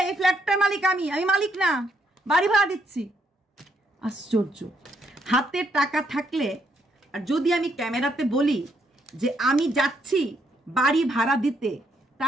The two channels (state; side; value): normal; both; correlation 0.74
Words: এই ফ্ল্যাটটার মালিক আমি মালিক না, বাড়ি ভাড়া দিচ্ছি। আশ্চর্য, হাতে টাকা থাকলে আর যদি আমি ক্যামেরাতে বলি যে আমি যাচ্ছি বাড়ি ভাড়া দিতে,